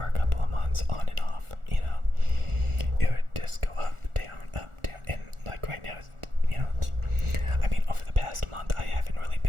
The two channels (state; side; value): late; left; 1.4 ms